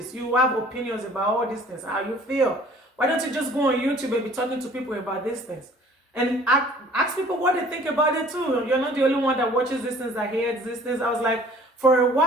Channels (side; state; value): both; normal; correlation 0.52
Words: You have opinions about all these things. How you feel. Why don't you just go on YouTube and be talking to people about these things? And ask people what they think about it too. You're not the only one that watches these things, that hears these things. I was like, for a